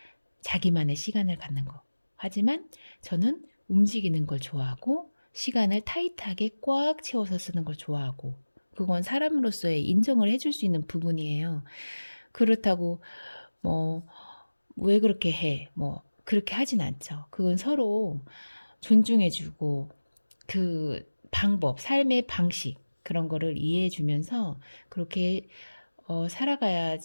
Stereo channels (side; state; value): both; inverted; correlation -1.00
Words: 자기만의 시간을 갖는 거. 하지만 저는 움직이는 걸 좋아하고 시간을 타이트하게 꽉 채워서 쓰는 걸 좋아하고 그건 사람으로서의 인정을 해줄 수 있는 부분이에요. 그렇다고 뭐 왜 그렇게 해? 뭐 그렇게 하진 않죠. 그건 서로 존중해주고 그 방법, 삶의 방식 그런 거를 이해해 주면서 그렇게